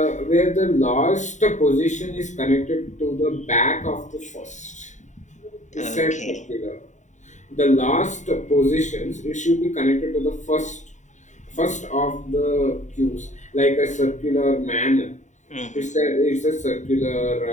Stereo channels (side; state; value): right; late; 0.35 ms